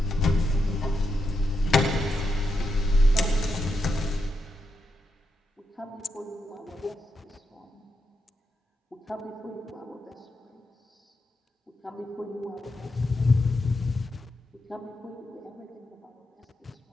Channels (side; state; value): both; normal; correlation 0.85